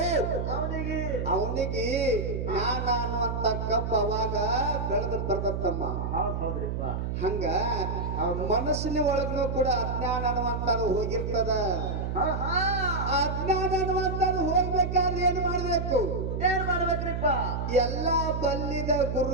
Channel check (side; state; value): right; noise; hum, 2 dB below the sound